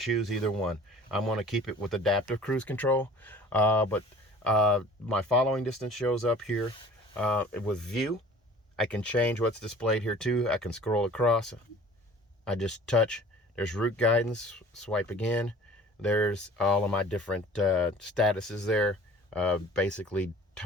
either one. I'm going to keep it with adaptive cruise control, but my following distance shows up here with view. I can change what's displayed here too. I can scroll across. I just touch. There's route guidance. Swipe again. There's all of my different statuses there. Basically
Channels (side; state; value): both; normal; correlation 0.46